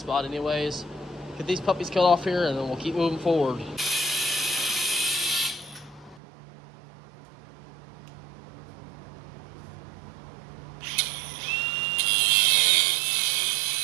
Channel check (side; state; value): left; drops out; at 6.2 s